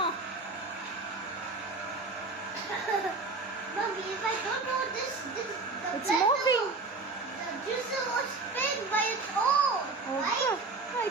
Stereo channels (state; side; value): quieter; left; 3.7 dB